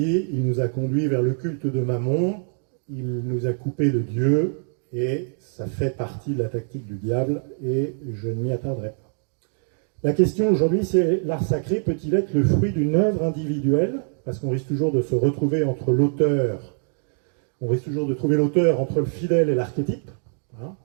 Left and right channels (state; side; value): silent; left; 63 dB below the other